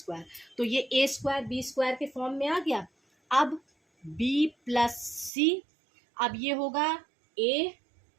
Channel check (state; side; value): drops out; left; at 5.3 s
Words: तो ये a स्क्वायर b स्क्वायर के फॉर्म में आ गया। अब b प्लस सी, अब ये होगा a